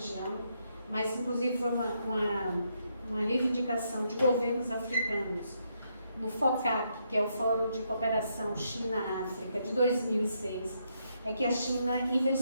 mas inclusive foi uma reivindicação de governos africanos no FOCAC, que é o Fórum de Cooperação China-África, de 2006, é que a China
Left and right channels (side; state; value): both; inverted; correlation -0.77